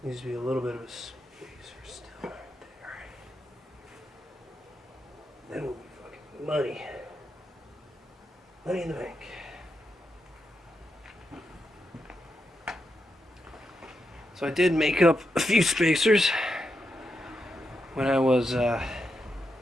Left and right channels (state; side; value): normal; both; correlation 0.85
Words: needs to be a little bit of a spacer still right there. Then we'll be fucking money. Money in the bank. So I did make up a few spacers when I was